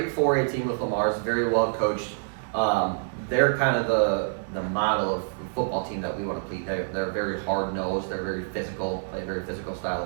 4A team with Lamar's, very well coached. They're kind of the model of football team that we want to play. They're very hard nosed. They're very physical, play a very physical style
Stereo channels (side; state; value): left; silent; digital silence